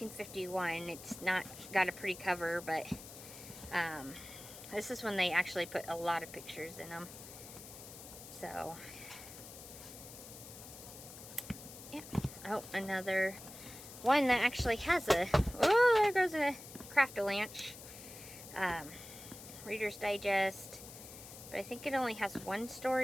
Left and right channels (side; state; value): left; noise; hiss, 14 dB below the sound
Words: It's not got a pretty cover, but this is when they actually put a lot of pictures in them. So, yeah. Oh, another one that actually has oh, there goes a Craft-A-Lanch. Reader's Digest. But I think it only has 1